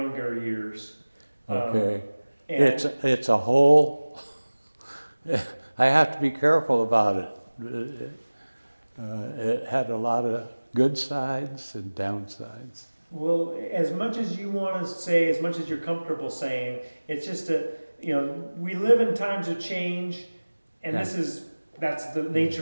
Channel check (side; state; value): both; inverted; correlation -1.00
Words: years. Okay. And It's a whole, I have to be careful about it. It had a lot of good sides and downsides. well, as much as you want to say, as much as you're comfortable saying, it's just we live in times of change, and Yeah. that's the